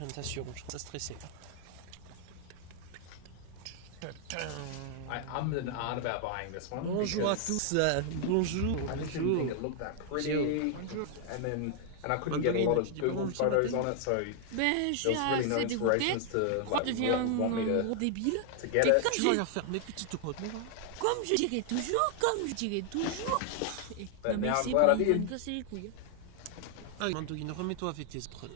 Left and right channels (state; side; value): different; both; correlation 0.00